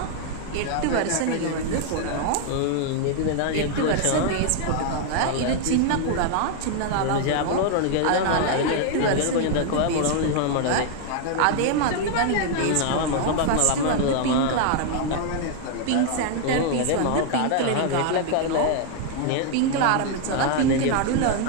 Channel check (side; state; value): both; different; correlation 0.00